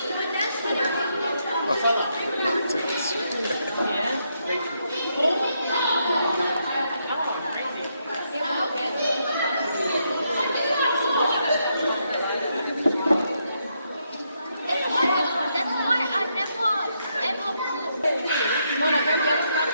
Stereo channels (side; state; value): both; inverted; correlation -0.78